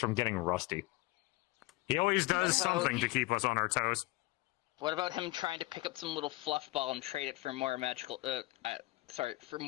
getting rusty. He always does something to keep us on our toes. What about him trying to pick up some little fluff ball and trade it for more magical? For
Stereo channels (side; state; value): right; quieter; 21.1 dB